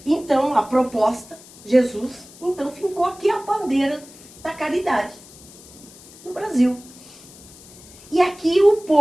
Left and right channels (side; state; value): left; noise; hiss, 21 dB below the sound